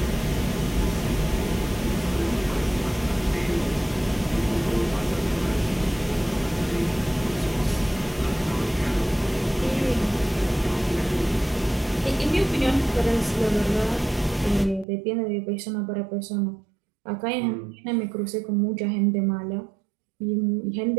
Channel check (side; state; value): left; drops out; at 14.9 s